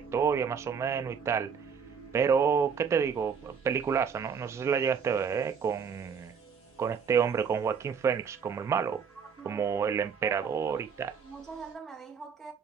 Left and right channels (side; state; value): left; quieter; 6.6 dB